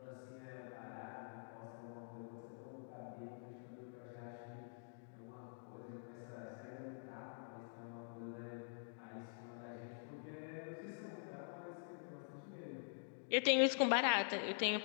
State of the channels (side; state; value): right; silent; digital silence